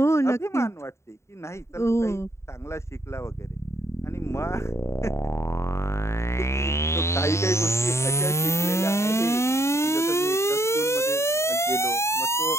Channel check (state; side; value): late; right; 0.13 ms